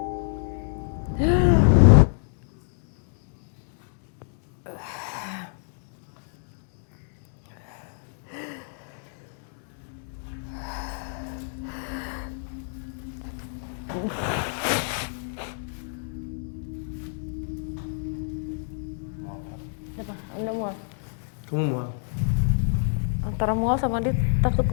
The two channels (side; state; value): right; silent; digital silence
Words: Apa? Udah mual. Kamu mual? Antara mual sama dia takut